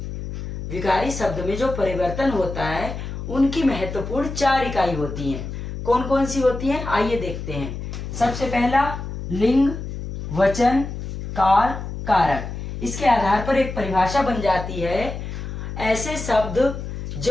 विकारी शब्द में जो परिवर्तन होता है उनकी महत्वपूर्ण 4 इकाई होती हैं। कौन कौन सी होती हैं? आइए देखते हैं। सबसे पहला लिंग, वचन, काल, कारक। इसके आधार पर एक परिभाषा बन जाती है। ऐसे शब्द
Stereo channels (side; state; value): left; noise; hum, 7 dB below the sound